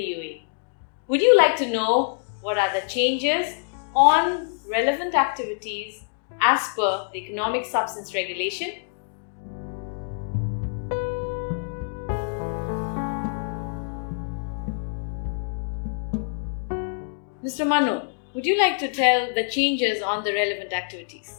Would you like to know what are the changes on relevant activities as per the economic substance regulation? Mr. Manu, would you like to tell the changes on the relevant activities?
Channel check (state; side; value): silent; right; digital silence